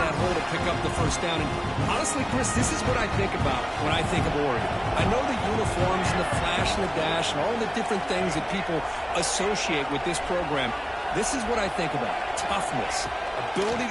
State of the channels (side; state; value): both; identical; correlation 1.00